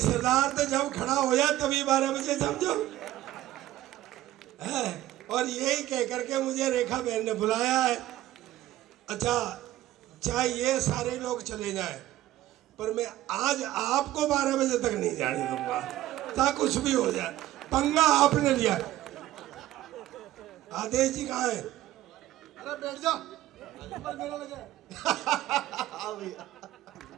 तो जब खड़ा हो जाए तभी 12 बजे समझो है। और यही कह करके मुझे रेखा बहन ने बुलाया है। अच्छा, चाहे ये सारे लोग चले जाए पर मैं आज आपको 12 बजे तक नहीं जाने दूंगा, चाहे कुछ भी हो जाए। पंगा आपने लिया। आदेश जी कहाँ है? अरे बैठ जा, मेरा लगे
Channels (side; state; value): left; quieter; 14.8 dB